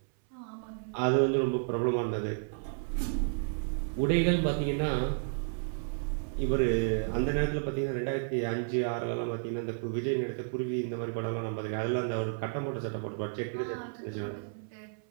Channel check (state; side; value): silent; left; 57 dB below the other